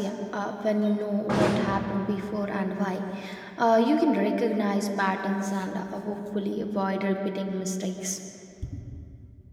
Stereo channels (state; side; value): identical; both; correlation 1.00